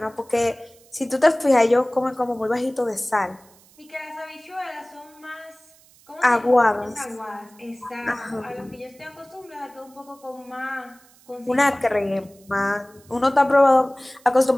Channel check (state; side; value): noise; right; hiss, 28 dB below the sound